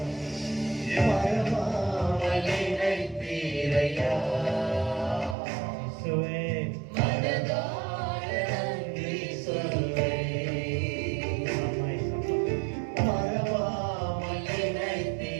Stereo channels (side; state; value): left; drops out; at 5.4 s